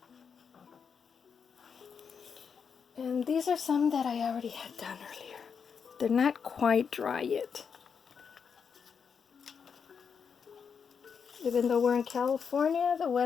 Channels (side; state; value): right; quieter; 6.5 dB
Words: And these are some that I already had done earlier. They're not quite dry yet. Even though we're in California, the